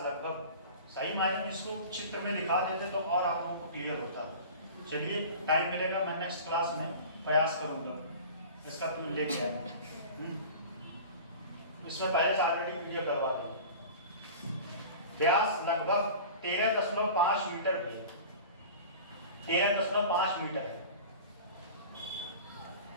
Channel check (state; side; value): inverted; both; correlation -0.37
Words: लगभग, सही मायने में इसको चित्र में दिखा देते तो और आप लोगों को क्लियर होता। चलिए टाइम मिलेगा, मैं नेक्स्ट क्लास में प्रयास करूंगा इसका लेके आएगा। इसमें पहले से ऑलरेडी वीडियो करवा दो। व्यास लगभग 13.5 मीटर भी है, 13.5 मीटर है।